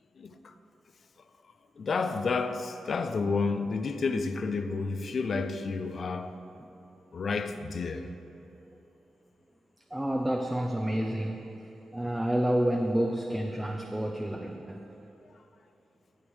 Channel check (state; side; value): normal; both; correlation 0.91